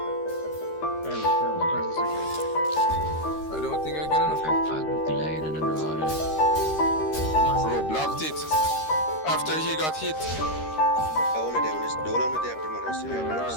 I don't think I can enough. Bro, blocked it. After he got hit. All of them, just don't let me there promote.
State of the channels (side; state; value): right; late; 13 ms